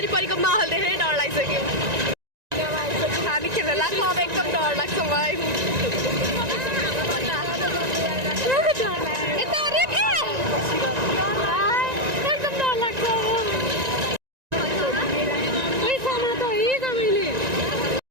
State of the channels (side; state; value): left; late; 1.9 ms